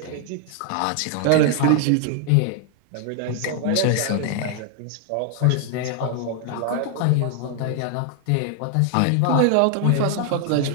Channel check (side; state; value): both; different; correlation 0.00